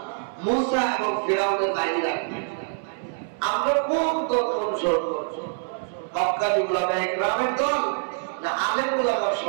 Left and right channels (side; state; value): left; silent; 62 dB below the other